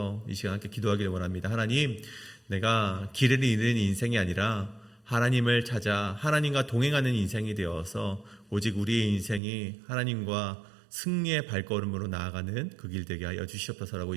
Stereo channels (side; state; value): left; drops out; at 9.4 s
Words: 이 시간 함께 기도하기를 원합니다. 하나님, 내가 길을 잃은 인생이 아니라 하나님을 찾아 하나님과 동행하는 인생이 되어서 오직 우리의 인생이 하나님과 승리의 발걸음으로 나아가는 그 길 되게 하여 주시옵소서라고